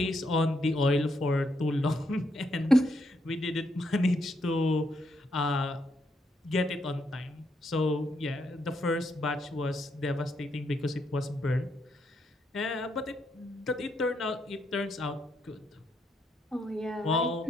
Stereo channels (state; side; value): normal; both; correlation 0.77